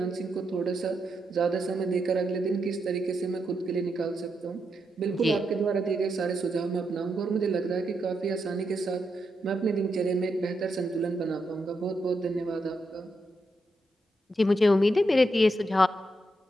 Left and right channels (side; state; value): both; normal; correlation 0.83